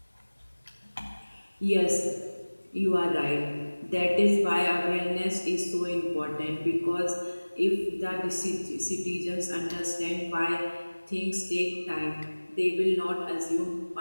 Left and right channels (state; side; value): inverted; both; correlation -1.00